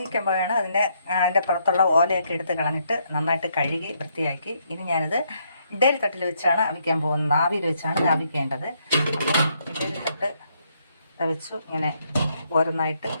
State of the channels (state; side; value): inverted; both; correlation -0.73